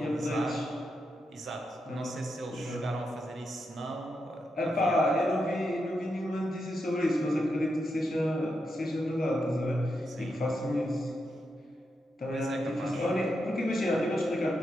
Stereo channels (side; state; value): both; normal; correlation 0.85